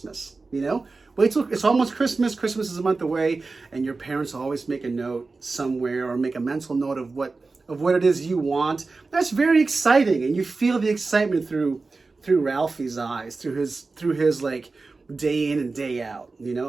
you know? Wait till it's almost Christmas. Christmas is a month away, and your parents always make a note somewhere or make a mental note of what it is you want. That's very exciting, and you feel the excitement through Ralphie's eyes, through his like day in and day out. You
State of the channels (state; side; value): quieter; left; 3.9 dB